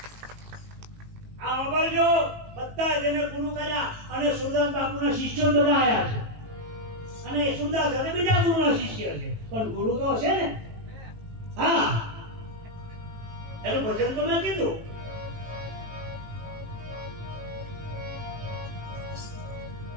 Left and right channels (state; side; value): late; left; 18 ms